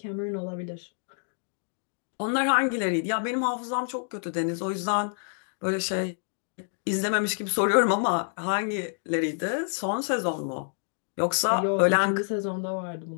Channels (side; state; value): right; silent; digital silence